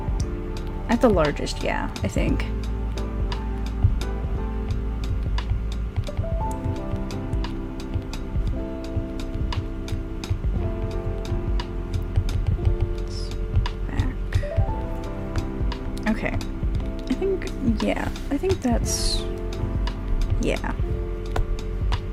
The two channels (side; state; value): both; identical; correlation 1.00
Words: at the largest, yeah, I think. Okay, I think that's, yeah.